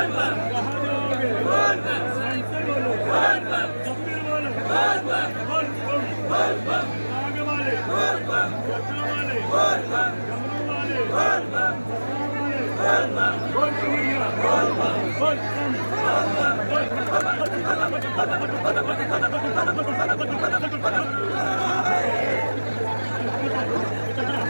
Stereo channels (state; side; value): inverted; both; correlation -1.00